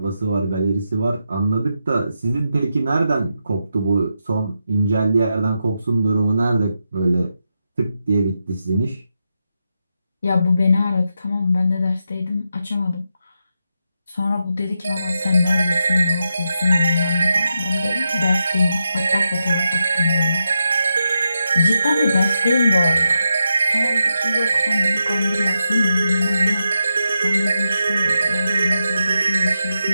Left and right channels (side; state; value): both; inverted; correlation -0.86